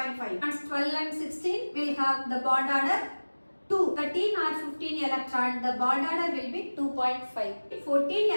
And 12 and 16 will have the bond order 2. 13 or 15 electron the bond order will be 2.5. 14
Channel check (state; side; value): inverted; both; correlation -1.00